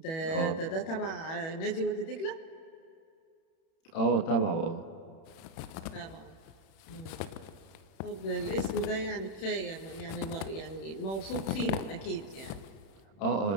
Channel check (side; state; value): right; late; 31 ms